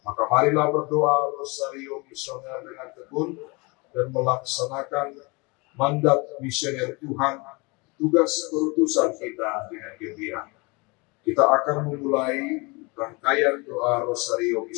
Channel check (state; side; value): quieter; right; 27.5 dB